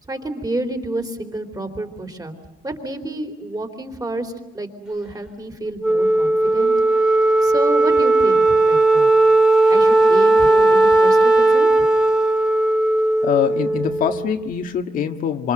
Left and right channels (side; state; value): both; normal; correlation 0.90